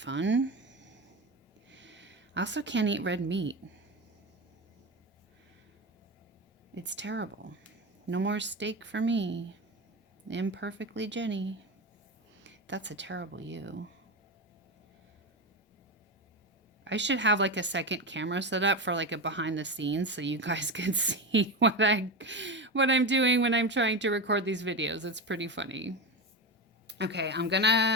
I also can't eat red meat. It's terrible. No more steak for me. Imperfectly Jenny. That's a terrible you. I should have like a second camera set up for like a behind the scenes so you guys can see what I'm doing when I'm trying to record these videos. It's pretty funny. Okay, I'm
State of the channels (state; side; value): normal; both; correlation 0.18